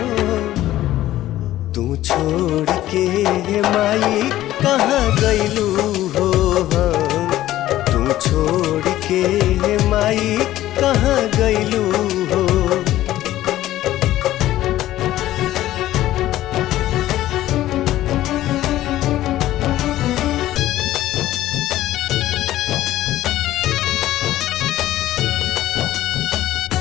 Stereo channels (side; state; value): right; quieter; 14.4 dB